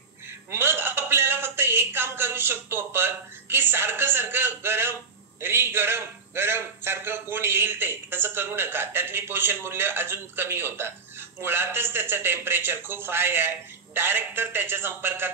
मग आपल्याला फक्त एक काम करू शकतो आपण की सारखं सारखं गरम गरम गरम सारखं कोण येईल ते तसं करू नका. त्यातली पोषण मूल्य अजून कमी होतात. मुळातच त्याचं टेम्परेचर खूप हाय आहे. डायरेक्ट तर त्याच्या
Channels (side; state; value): left; quieter; 4.7 dB